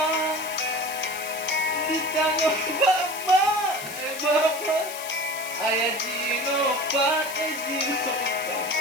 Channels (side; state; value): left; noise; hiss, 10 dB below the sound